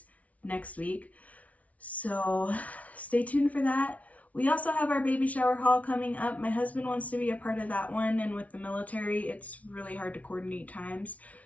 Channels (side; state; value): right; late; 0.068 ms